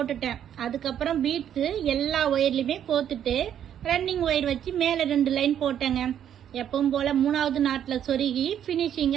அதுக்கப்புறம் பீட்ஸ் எல்லா ஒயர்லயுமே கோத்துட்டு ரன்னிங் ஒயர் வச்சு மேல 2 லைன் போட்டேங்க. எப்பவும் போல 3வது நாட்ல சொருகி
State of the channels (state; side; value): quieter; left; 9.8 dB